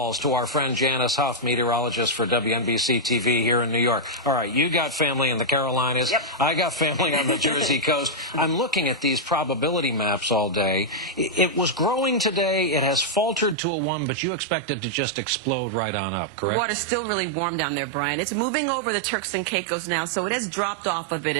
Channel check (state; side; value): drops out; left; at 13.6 s